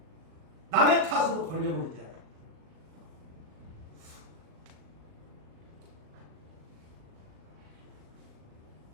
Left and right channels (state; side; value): late; left; 38 ms